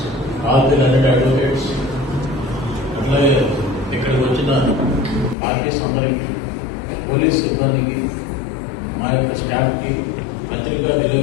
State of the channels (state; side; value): drops out; right; at 5.4 s